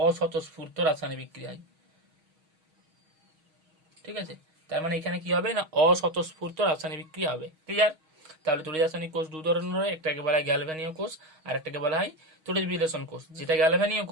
রাসায়নিক বিক্রিয়া হয়। ঠিক আছে, তার মানে এখানে কি হবে না, অস্বতঃস্ফূর্ত রাসায়নিক বিক্রিয়া হবে। ক্লিয়ার? তাহলে তড়িৎ রাসায়নিক কোষ দু ধরনের হয়, একটাকে বলা হয় গ্যালভ্যানীয় কোষ আর একটাকে বলা হয় তড়িৎ বিশ্লেষণ কোষ। যেটা গ্যালভ্যানীয়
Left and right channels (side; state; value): left; late; 6.3 ms